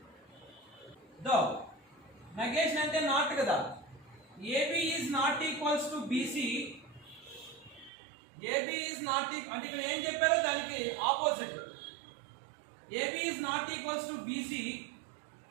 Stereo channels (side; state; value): left; drops out; at 7.9 s